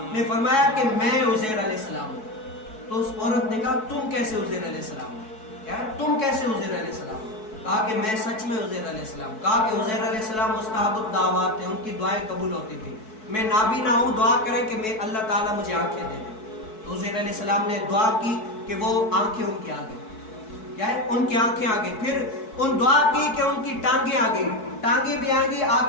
نے فرمایا کہ میں عزیر علیہ السلام ہوں. تو اس عورت نے کہا تم کیسے عزیر علیہ السلام ہو؟ کیا تم کیسے عزیر علیہ السلام ہو؟ کہا کہ میں سچ میں عزیر علیہ السلام. کہا کہ عزیر علیہ السلام مستحب الدعوات تھے, ان کی دعائیں قبول ہوتی تھی. میں نابینا ہوں, دعا کریں کہ میں اللہ تعالیٰ مجھے آنکھیں دے دے. تو عزیر علیہ السلام نے دعا کی کہ وہ آنکھیں ان کی آگے, کیا ہے ان کی آنکھیں آگے. پھر ان دعا کی کہ ان کی ٹانگیں آگے, ٹانگیں بھی آگے,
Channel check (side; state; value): right; late; 4.6 ms